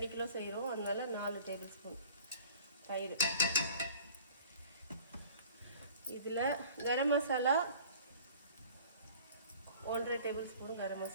கிலோ செய்கிறோம், அதனால 4 டேபிள் ஸ்பூன் தயிர். இதில் கரம் மசாலா 1.5 டேபிள் ஸ்பூன் கரம்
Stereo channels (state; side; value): inverted; both; correlation -0.48